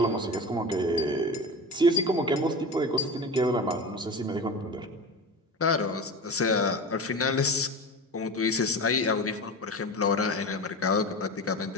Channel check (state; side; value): normal; both; correlation 0.29